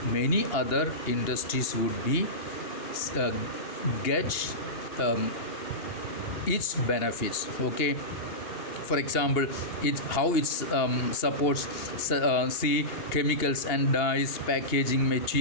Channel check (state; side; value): late; right; 2.8 ms